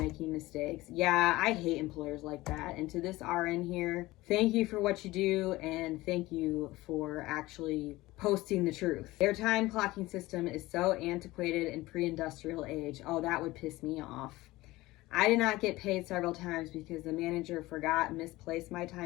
mistakes. Yeah, I hate employers like that. And to this RN here, thank you for what you do, and thank you for actually posting the truth. Their time clocking system is so antiquated and pre-industrial age. Oh, that would piss me off. I did not get paid several times because the manager forgot and misplaced my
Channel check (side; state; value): right; quieter; 19.0 dB